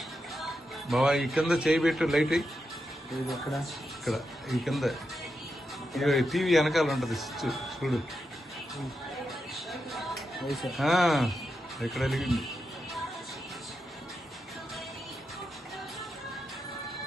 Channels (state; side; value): normal; both; correlation 0.86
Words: బాబా ఈ కింద చేయి పెట్టు లైట్ ఎక్కడ? ఇక్కడ ఈ కింద టీవీ వెనకాల ఉంటుంది చూడు. ఇక్కడ వెలిగింది.